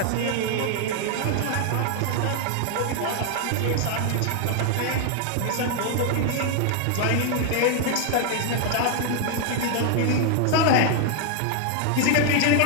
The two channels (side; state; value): both; different; correlation 0.00